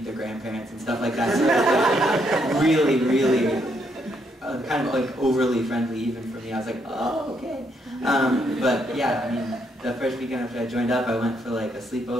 their grandparents and stuff like that. So it was like really, really kind of like overly friendly even for me. I was like, oh, okay. But yeah, I mean, the first weekend after I joined up, I went for like a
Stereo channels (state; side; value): normal; both; correlation 0.75